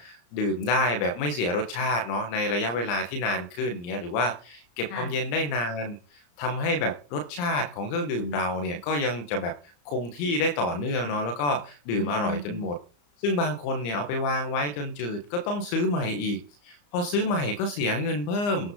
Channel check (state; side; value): late; right; 34 ms